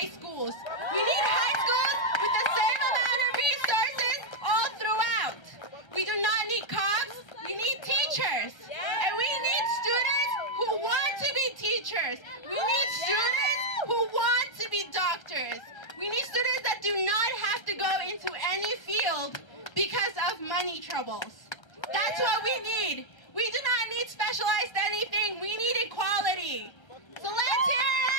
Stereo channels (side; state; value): right; late; 1.3 ms